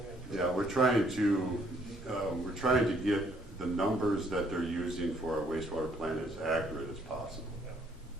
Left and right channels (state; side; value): normal; both; correlation 0.66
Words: in. Yeah, we're trying to get the numbers that they're using for our wastewater plant as accurate as possible.